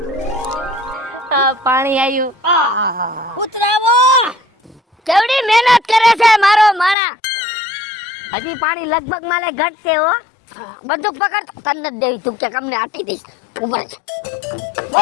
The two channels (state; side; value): drops out; right; at 7.0 s